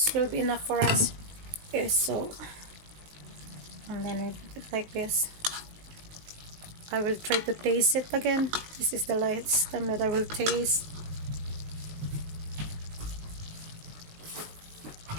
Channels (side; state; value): left; late; 19 ms